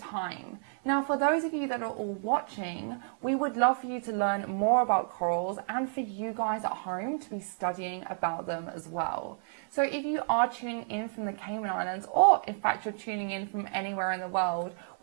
Now, for those of you that are all watching, we would love for you to learn more about corals and for you guys at home to be studying about them as well. So if you are tuning in from the Cayman Islands, or in fact you're tuning in from anywhere in the world,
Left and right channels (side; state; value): left; silent; 56 dB below the other